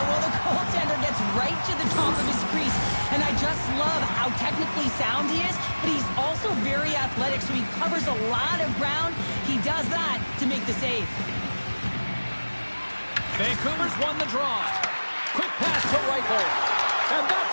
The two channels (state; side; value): inverted; both; correlation -1.00